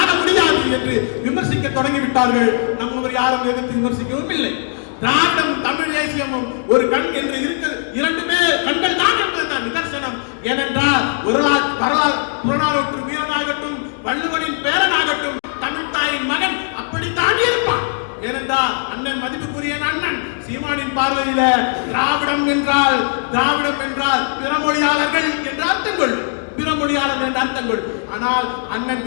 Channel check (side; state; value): right; silent; 59 dB below the other